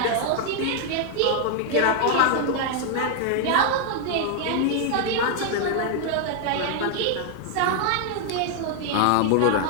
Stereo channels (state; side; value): different; both; correlation 0.00